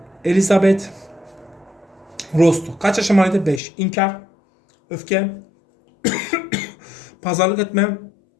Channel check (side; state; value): right; drops out; at 3.6 s